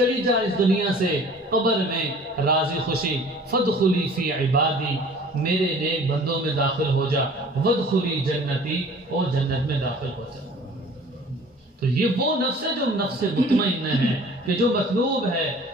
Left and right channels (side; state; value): both; normal; correlation 0.48